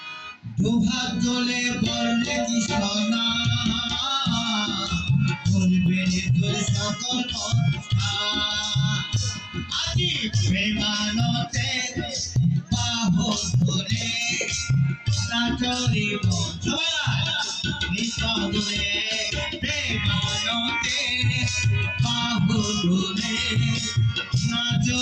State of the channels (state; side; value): identical; both; correlation 1.00